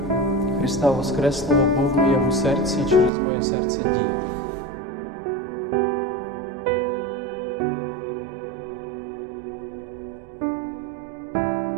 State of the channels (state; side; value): drops out; left; at 3.1 s